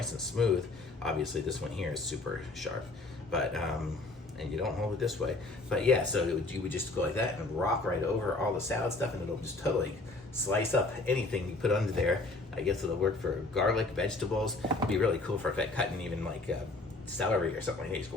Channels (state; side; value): quieter; right; 3.1 dB